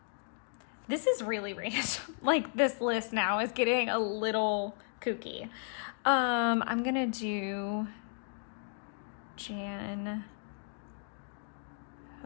This is really random. Like this list now is getting a little kooky. I'm gonna do Jan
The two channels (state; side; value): silent; right; 55 dB below the other